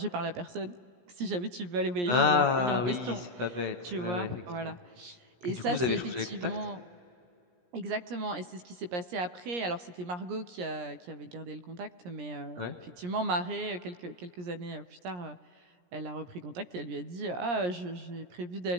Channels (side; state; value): left; late; 17 ms